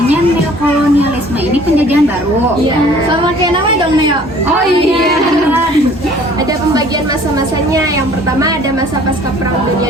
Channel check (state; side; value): normal; both; correlation 0.53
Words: neokolonialisme ini penjajahan baru. Iya. Sama kayak namanya dong, Neo. Oh iya. Ada pembagian masa-masanya. Yang pertama ada masa pasca Perang